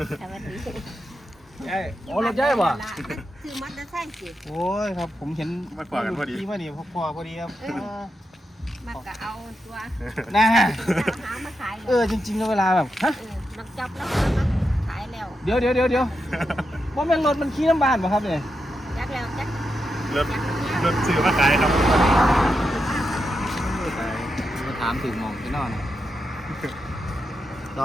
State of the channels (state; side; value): normal; both; correlation 0.87